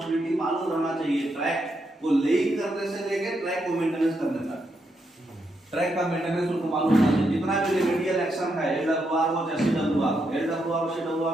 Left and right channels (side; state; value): both; normal; correlation 0.81